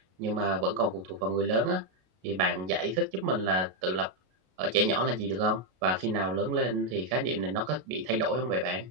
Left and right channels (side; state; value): left; late; 32 ms